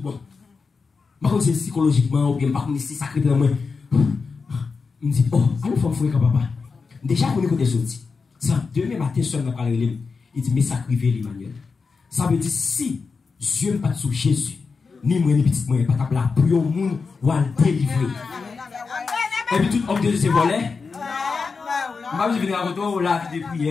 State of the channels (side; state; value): right; quieter; 4.8 dB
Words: Je c'est psychologiquement ou bien pas comme si sacré dans moi. Je me dis oh, allons faire fouiller papa. Déjà on est côté sorti. Ça demain matin seul m'a parlé il dit mais sacrifier l'Emmanuel. Ça veut dire si Dieu pas sous Jésus, ni moi ni petit moi pas taper la pour au monde ou à délivrer. Et puis tout homme de Dieu c'est volé. Je vais venir à retour la vie de